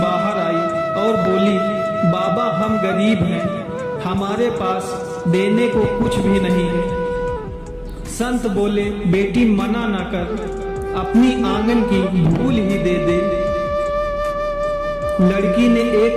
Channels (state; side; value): identical; both; correlation 1.00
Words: बाहर आई और बोली, बाबा हम गरीब हैं, हमारे पास देने को कुछ भी नहीं है। संत बोले, बेटी मना ना कर, अपनी आंगन की धूल ही दे दे। लड़की ने एक